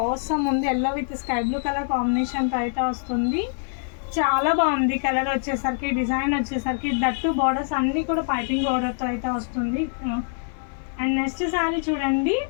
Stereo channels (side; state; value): right; silent; 57 dB below the other